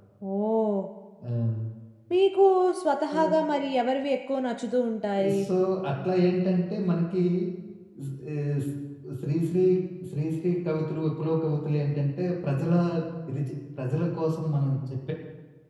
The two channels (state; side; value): identical; both; correlation 1.00